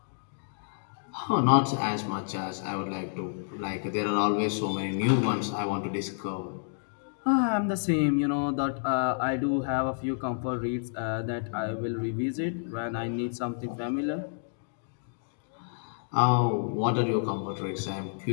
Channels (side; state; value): right; silent; digital silence